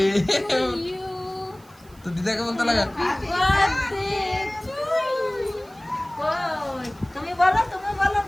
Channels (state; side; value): noise; right; hiss, 28 dB below the sound